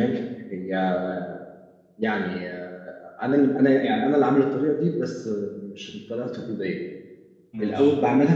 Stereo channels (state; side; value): identical; both; correlation 1.00